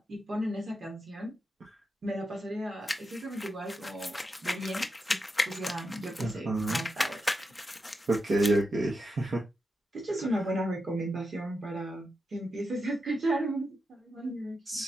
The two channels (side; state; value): both; normal; correlation 0.87